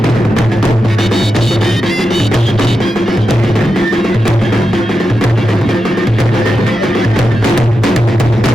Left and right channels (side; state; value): both; normal; correlation 0.89